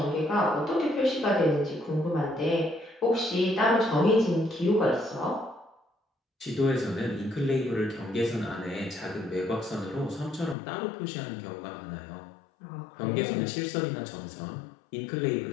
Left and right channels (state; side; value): drops out; right; at 10.6 s